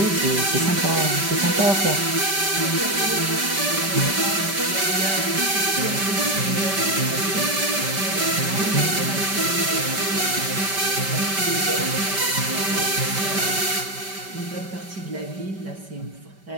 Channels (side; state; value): left; late; 5.1 ms